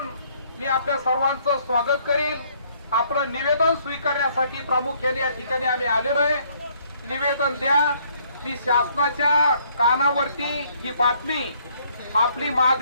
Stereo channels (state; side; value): inverted; both; correlation -0.65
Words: मी आपल्या सर्वांचं स्वागत करील. आपलं निवेदन स्वीकारण्यासाठी प्रामुख्याने या ठिकाणी आम्ही आलेलो आहे. निवेदन द्या. मी शासनाच्या कानावरती ही बातमी आपली